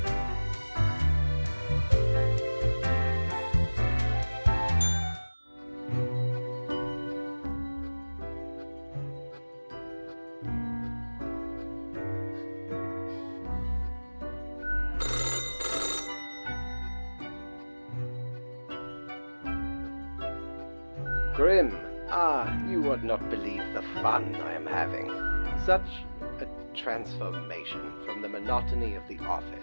Grim, you would not believe the fun I am having. Such a transformation from the monotony of the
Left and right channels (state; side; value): inverted; both; correlation -1.00